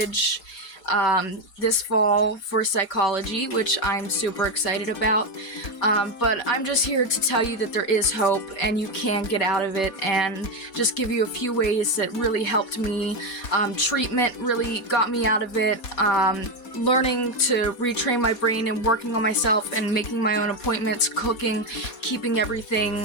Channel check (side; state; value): right; late; 4.2 ms